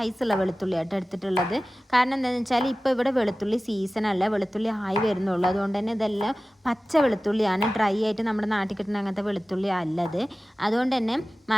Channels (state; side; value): normal; both; correlation 0.97